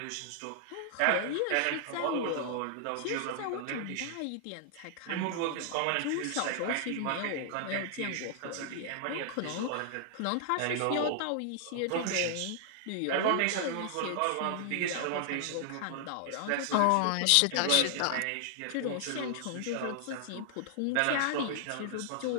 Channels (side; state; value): both; different; correlation 0.00